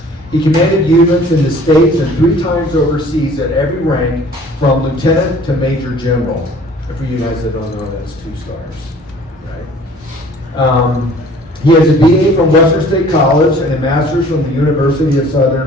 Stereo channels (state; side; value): normal; both; correlation 0.51